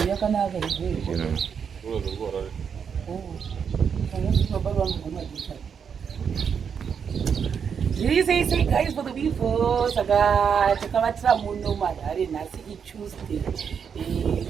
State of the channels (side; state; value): left; quieter; 7.0 dB